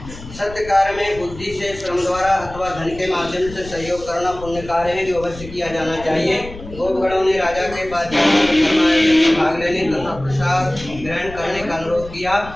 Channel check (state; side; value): noise; left; rumble, 15 dB below the sound